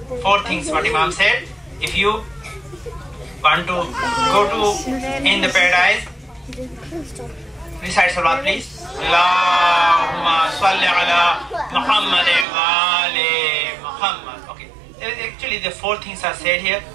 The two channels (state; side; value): drops out; left; at 12.5 s